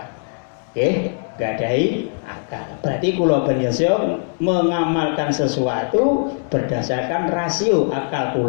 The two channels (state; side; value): silent; right; digital silence